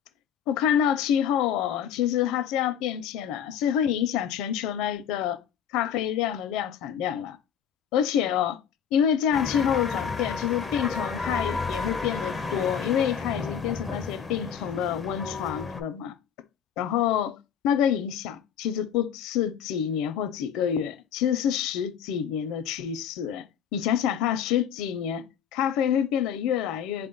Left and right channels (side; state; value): right; quieter; 8.5 dB